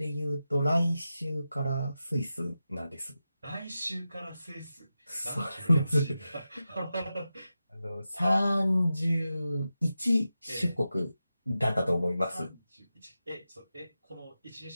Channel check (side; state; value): both; inverted; correlation -0.92